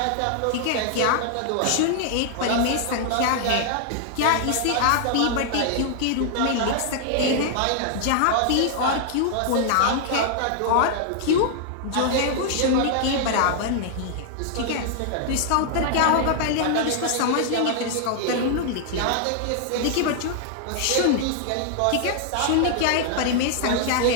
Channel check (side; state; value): both; different; correlation 0.00